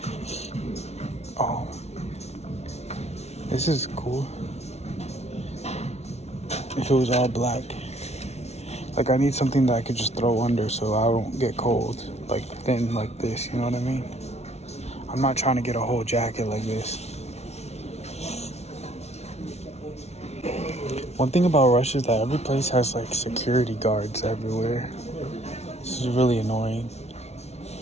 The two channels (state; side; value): late; right; 0.31 ms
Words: Oh, this is cool. If it was all black. Like I need something that I could just throw under so I don't get cold. Like thin like this, you know what I mean? I'm not trying to get a whole jacket like this. One thing about Russia is that every place has like security guards everywhere. This is really annoying.